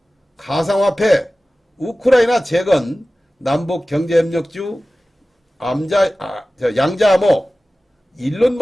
가상화폐, 우크라이나 재건, 남북경제협력주, 양자암호, 일론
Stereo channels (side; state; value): both; normal; correlation 0.96